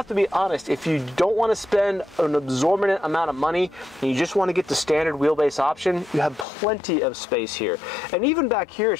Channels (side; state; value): right; drops out; at 6.5 s